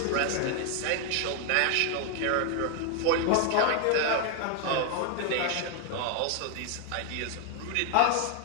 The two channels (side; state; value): both; different; correlation 0.01